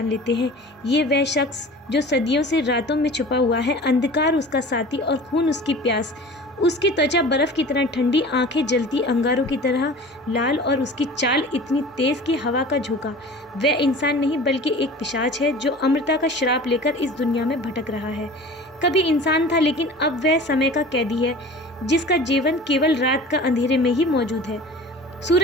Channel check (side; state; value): both; normal; correlation 0.40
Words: लेते हैं। ये वह शख्स जो सदियों से रातों में छुपा हुआ है, अंधकार उसका साथी और खून उसकी प्यास। उसकी त्वचा बर्फ की तरह ठंडी, आंखें जलती अंगारों की तरह लाल और उसकी चाल इतनी तेज कि हवा का झोंका। वह इंसान नहीं बल्कि एक पिशाच है जो अमरता का श्राप लेकर इस दुनिया में भटक रहा है। कभी इंसान था, लेकिन अब वह समय का कैदी है जिसका जीवन केवल रात का अंधेरे में ही मौजूद है।